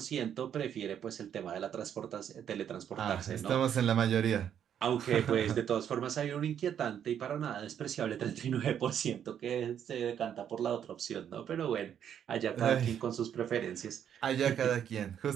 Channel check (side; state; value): left; quieter; 9.1 dB